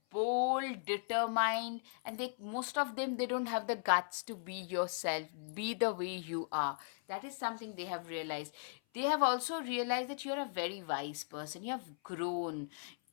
bold, determined, and they, most of them, they don't have the guts to be yourself, be the way you are. That is something they have realized. They have also realized that you're a very wise person. You have grown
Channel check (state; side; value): silent; right; 53 dB below the other